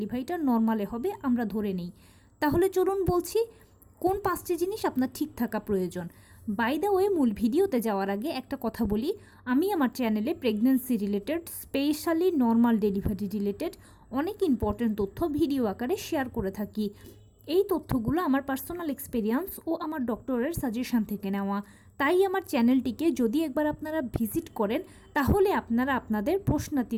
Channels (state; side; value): identical; both; correlation 1.00